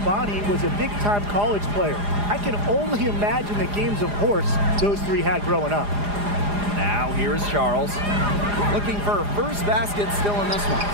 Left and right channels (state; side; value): late; left; 4.9 ms